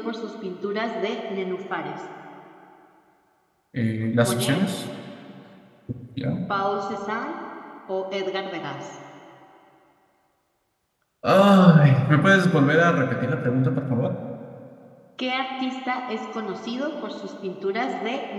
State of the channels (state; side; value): identical; both; correlation 1.00